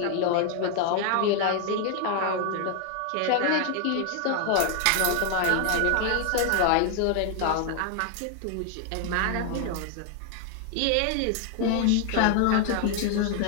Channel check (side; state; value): both; different; correlation 0.00